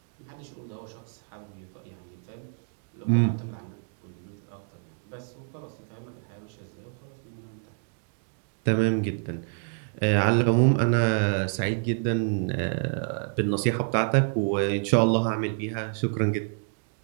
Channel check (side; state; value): left; silent; 59 dB below the other